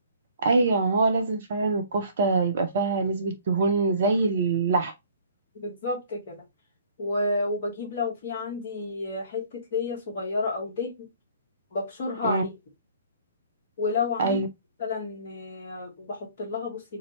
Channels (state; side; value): inverted; both; correlation -0.55